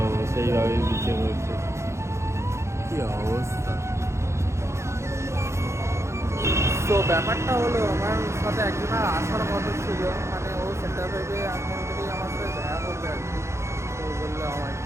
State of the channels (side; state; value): left; late; 0.13 ms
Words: সেইভাবেই বিক্রি করছে। কী অবস্থা! তো ব্যাপারটা হলো, আমার সাথে একজনের আসার কথা ছিল, মানে ও সেন্টার ভেবে এখন থেকেই আমার সাথে দেখা করবে আর কি। তো বললো আমার